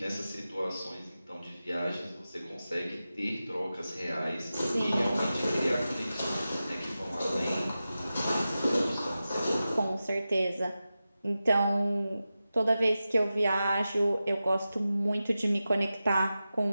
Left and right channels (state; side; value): inverted; both; correlation -0.93